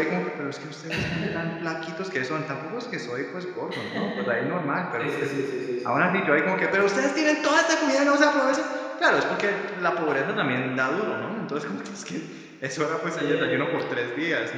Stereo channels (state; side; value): identical; both; correlation 1.00